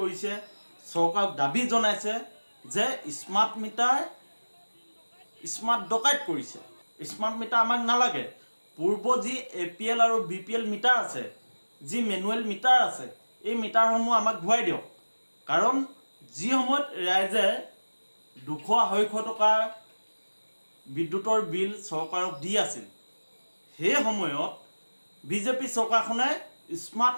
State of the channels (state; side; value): inverted; both; correlation -1.00